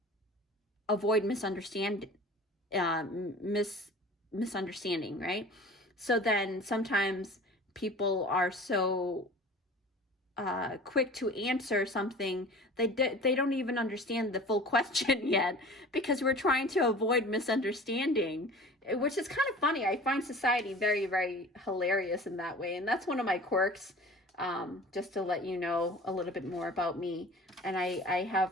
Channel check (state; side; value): normal; both; correlation 0.41